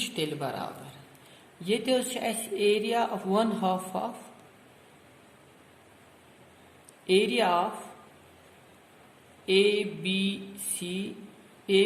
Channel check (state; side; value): identical; both; correlation 1.00